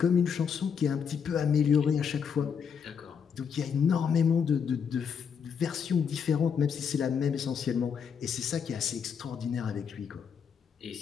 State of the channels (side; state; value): right; quieter; 6.9 dB